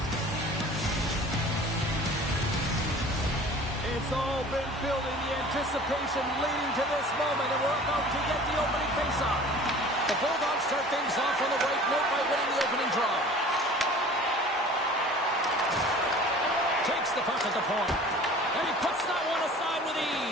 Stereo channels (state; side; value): normal; both; correlation 0.44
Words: It's all been building, the anticipation leading to this moment, and we're about to get the opening faceoff. The Bulldogs start things off on the right note by winning the opening draw. Takes the puck at the point, and he puts that one aside with